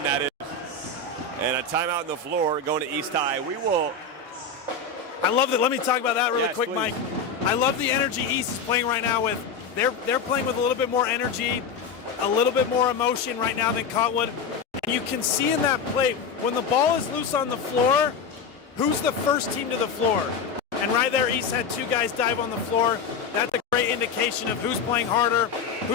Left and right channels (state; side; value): quieter; right; 5.1 dB